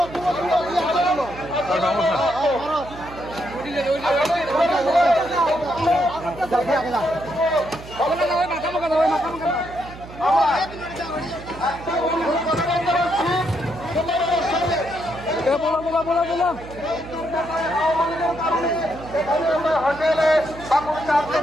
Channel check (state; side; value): noise; right; hum, 15 dB below the sound